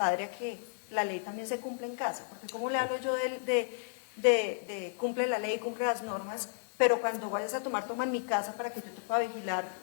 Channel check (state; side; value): silent; right; digital silence